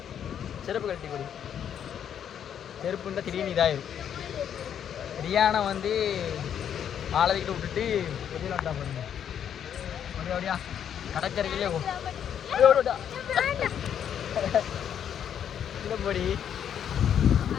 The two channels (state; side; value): quieter; right; 9.0 dB